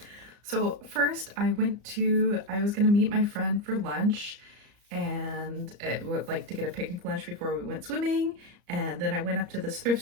So first I was gonna meet my friend for lunch and it would like to get a picnic lunch before we went swimming. And then I went up to this thrift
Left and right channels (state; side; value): late; left; 34 ms